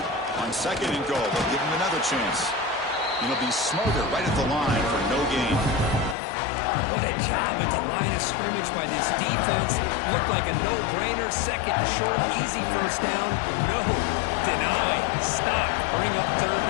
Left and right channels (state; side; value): drops out; right; at 6.2 s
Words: On second and goal, they'll give him another chance. It'll be Smoger right at the line for no gain. What a job at the line of scrimmage by this defense. Looked like a no-brainer. Second and short, easy first down. No, deny, stop, bring up third